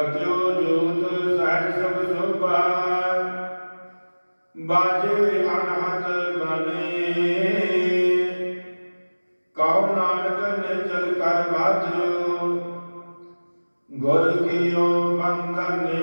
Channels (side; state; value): both; inverted; correlation -1.00